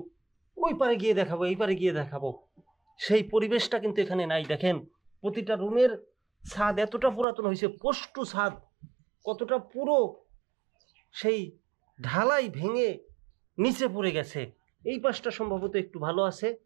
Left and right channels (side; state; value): left; drops out; at 7.2 s